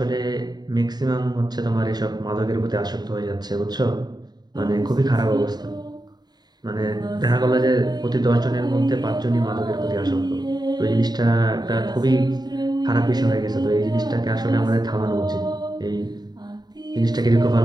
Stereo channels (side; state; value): left; late; 0.20 ms